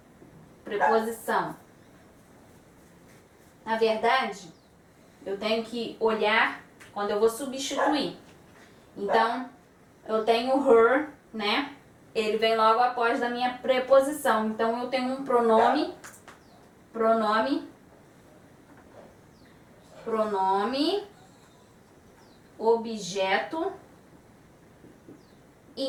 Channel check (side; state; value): both; identical; correlation 1.00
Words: Preposição. Na verdade, eu tenho que olhar quando eu vou substituir. Então, eu tenho her, né? Ele vem logo após da minha preposição. Então, eu tenho um pronome, objeto